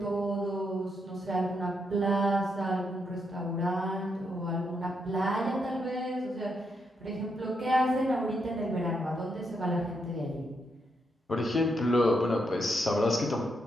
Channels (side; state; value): both; normal; correlation 0.80